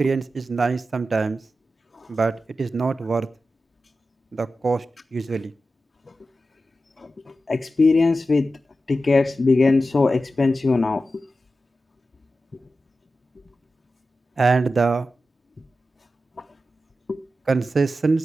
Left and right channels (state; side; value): normal; both; correlation 0.92